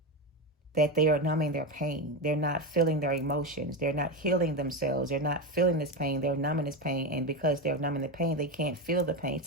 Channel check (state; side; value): normal; both; correlation 0.15